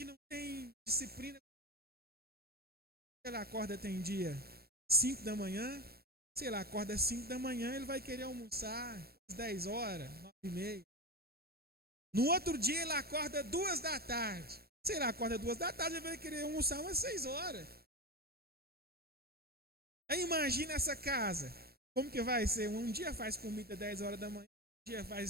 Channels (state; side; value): late; left; 0.45 ms